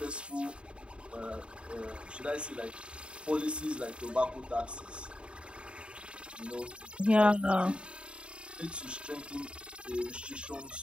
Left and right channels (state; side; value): late; left; 0.055 ms